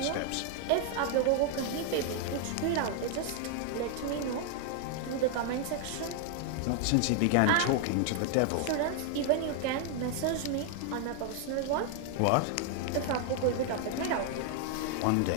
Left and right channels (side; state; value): both; different; correlation 0.00